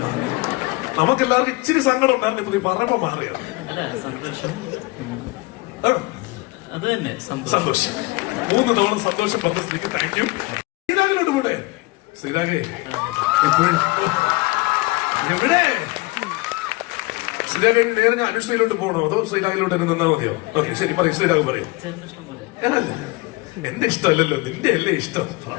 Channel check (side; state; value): right; quieter; 23.5 dB